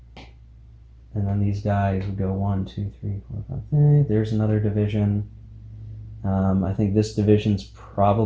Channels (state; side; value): identical; both; correlation 1.00